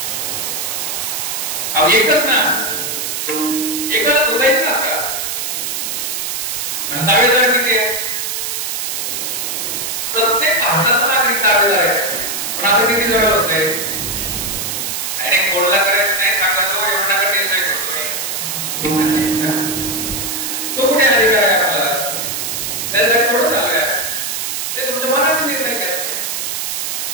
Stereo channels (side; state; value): right; noise; hiss, 3 dB below the sound